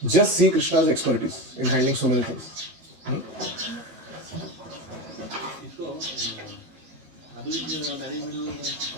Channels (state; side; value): late; left; 12 ms